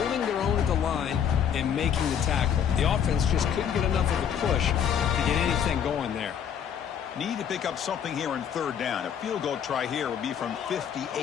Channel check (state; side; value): quieter; right; 8.4 dB